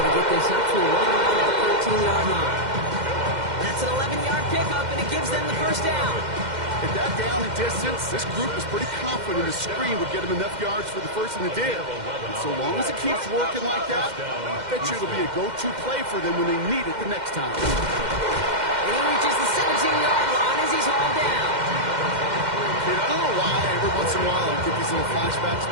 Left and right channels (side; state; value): left; late; 2.1 ms